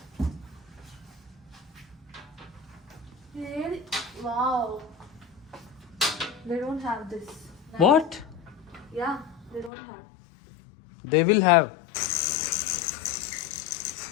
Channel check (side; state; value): right; drops out; at 9.7 s